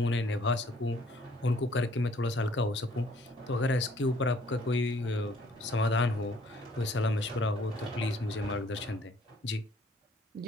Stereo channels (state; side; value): normal; both; correlation 0.60